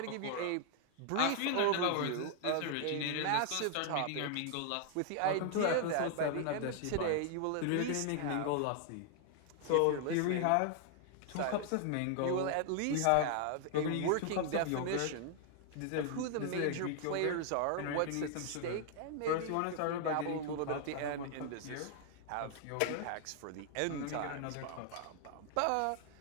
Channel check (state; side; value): different; both; correlation 0.00